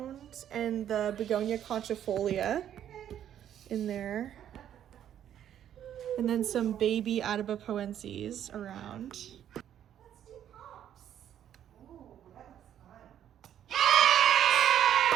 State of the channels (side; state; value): left; quieter; 10.3 dB